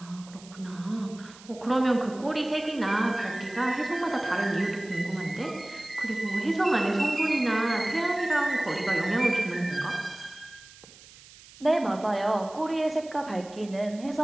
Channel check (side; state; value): right; noise; hiss, 21 dB below the sound